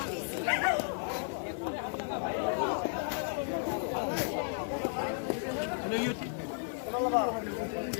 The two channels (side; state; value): right; silent; digital silence